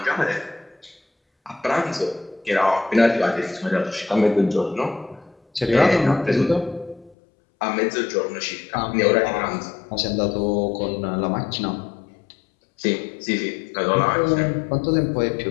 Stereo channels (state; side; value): drops out; right; at 7.2 s